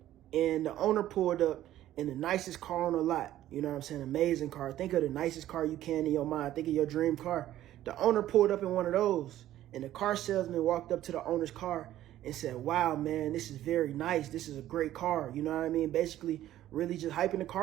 And the owner pulled up in the nicest car on the lot. You know what I'm saying? Amazing car. Think of the nicest car you can in your mind. Think of your dream car. The owner pulled up in one of those, and the car salesman walked up to the owner's car and said, wow, man, this is very nice. This is a great car. You know what I mean? Basically, really just hyping the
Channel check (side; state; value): left; quieter; 13.3 dB